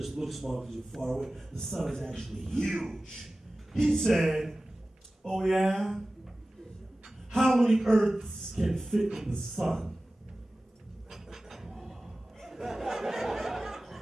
looks small because you're far away. The sun is actually huge. He said, oh yeah? How many Earths can fit in the sun?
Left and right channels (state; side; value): normal; both; correlation 0.97